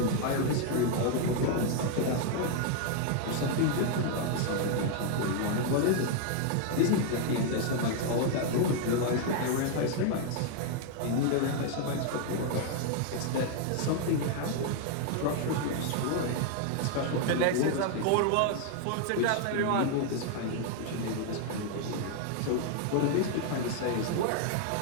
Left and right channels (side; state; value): both; different; correlation 0.00